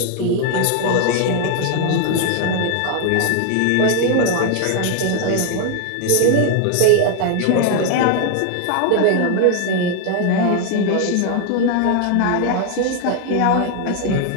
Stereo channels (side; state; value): both; different; correlation 0.00